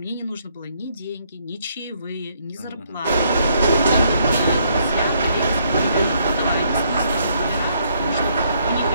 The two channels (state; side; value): inverted; both; correlation -0.70